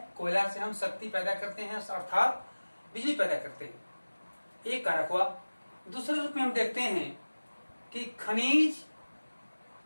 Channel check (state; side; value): inverted; both; correlation -1.00